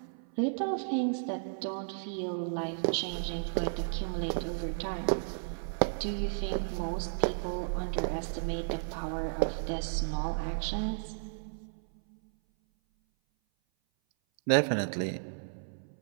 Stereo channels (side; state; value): left; silent; 56 dB below the other